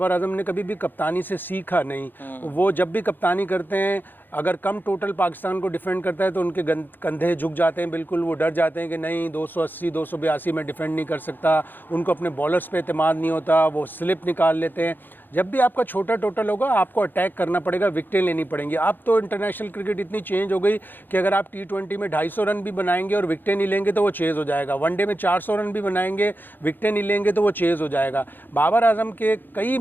आजम ने कभी भी कप्तानी से सीखा नहीं। वो जब भी कप्तानी करते हैं, अगर कम टोटल पाकिस्तान को डिफेंड करता है तो उनके कंधे झुक जाते हैं, बिल्कुल वो डर जाते हैं कि नहीं 280 282 में डिफेंड नहीं कर सकता। उनको अपने बॉलर्स पे एतमाद नहीं होता, वो स्लिप निकाल लेते हैं। जब भी आपका छोटा टोटल होगा आपको अटैक करना पड़ेगा, विकेटें लेनी पड़ेंगी। अब तो इंटरनेशनल क्रिकेट इतनी चेंज हो गई कि अगर आप T20 में 250 रन भी बनाएंगे और विकेटें नहीं लेंगे तो वो चेज़ हो जाएगा। वनडे में 400 रन भी बनाएंगे, विकेटें नहीं लेंगे तो वो चेज़ हो जाएगा। बाबर आजम के कई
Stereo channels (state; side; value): late; right; 0.091 ms